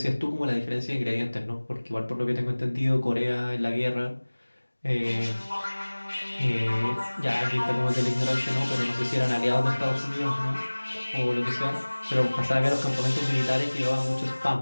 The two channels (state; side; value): inverted; both; correlation -1.00